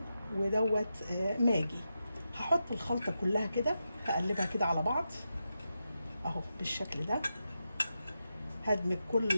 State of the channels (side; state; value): both; inverted; correlation -0.88